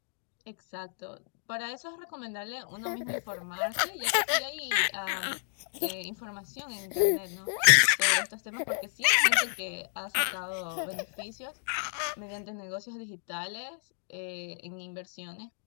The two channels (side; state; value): right; silent; digital silence